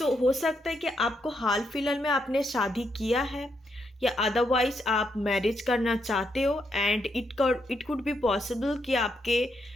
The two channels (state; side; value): normal; both; correlation 0.79